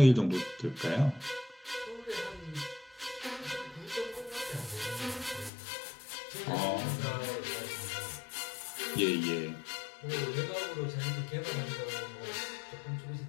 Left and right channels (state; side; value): drops out; right; at 5.5 s